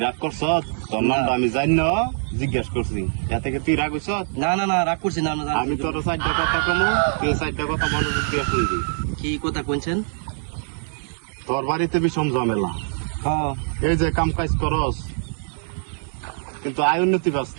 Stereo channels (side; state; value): left; silent; 63 dB below the other